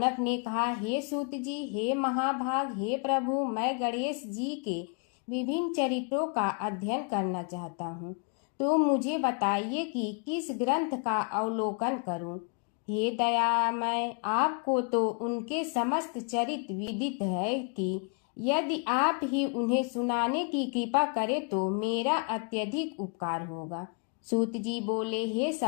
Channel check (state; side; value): quieter; right; 37.8 dB